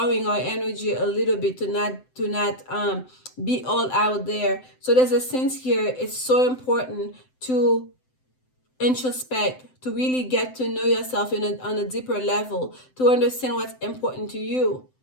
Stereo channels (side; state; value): right; late; 7.8 ms